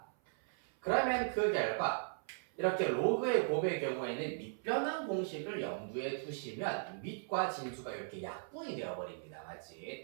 그러면 그 결과 이렇게 로그의 곱의 경우에는 밑변환 공식을 염두에 두시면 밑과 진수가 이렇게 약분이 되어버립니다. 맞지?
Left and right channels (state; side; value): silent; left; 53 dB below the other